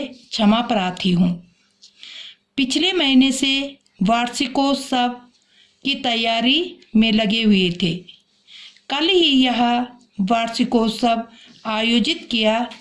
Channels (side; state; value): both; identical; correlation 1.00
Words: क्षमा प्रार्थी हूँ। पिछले महीने से वार्षिकोत्सव की तैयारी में लगे हुए थे। कल ही यह वार्षिकोत्सव आयोजित किया